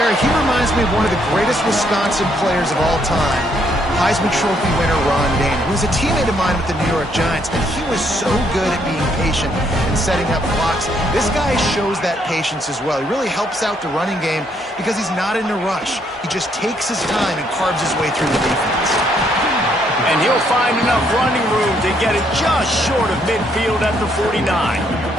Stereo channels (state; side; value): normal; both; correlation 0.71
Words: He reminds me of one of the greatest Wisconsin players of all time. Heisman Trophy winner Ron Daniel, who was a teammate of mine with the New York Giants, and he was so good at being patient and setting up blocks. This guy shows that patience as well. He really helps out the running game because he's not in a rush. He just takes his time and carves his way through the defense. And he'll find enough running room to get it just short of midfield at the 49.